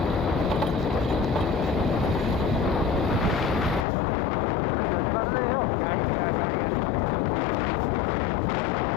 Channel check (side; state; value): right; drops out; at 3.9 s